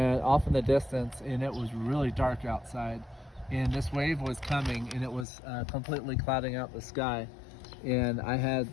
off in the distance, and it was really dark outside. And this wave was coming, and it was completely clouding out the sky. And I had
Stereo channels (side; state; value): right; drops out; at 5.2 s